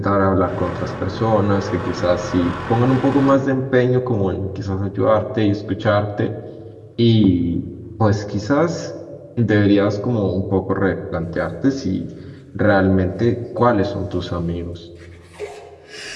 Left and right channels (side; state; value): both; identical; correlation 1.00